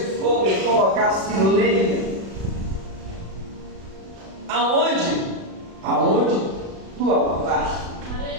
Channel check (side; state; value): left; late; 36 ms